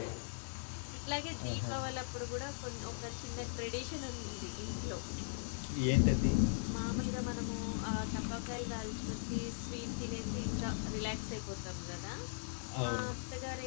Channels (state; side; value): silent; right; digital silence